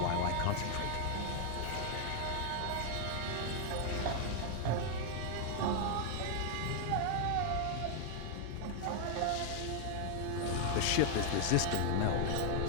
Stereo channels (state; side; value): different; both; correlation 0.00